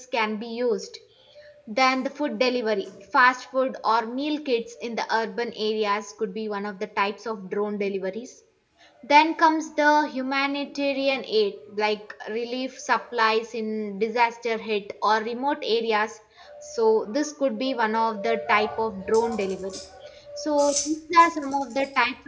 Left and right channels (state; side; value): identical; both; correlation 1.00